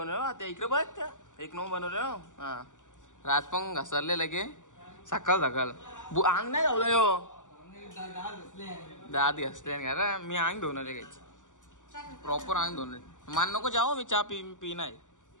आता. इकडे बघ एक नंबर बनवलं. हा राजपंग घसरले लगे सकाळ सकाळ. अंग नाही धावलं यो, दात घसले का मी अंग धुवून आले काहीच प्रॉपर अंग धुवून. मान नको जाओ, मी चहा पी नाही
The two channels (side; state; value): right; late; 0.87 ms